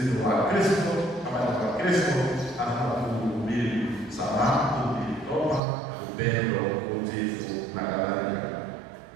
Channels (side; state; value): left; drops out; at 5.6 s